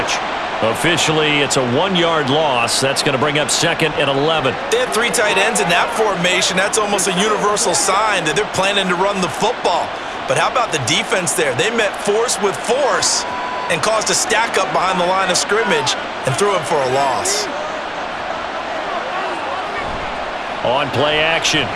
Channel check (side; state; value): both; identical; correlation 1.00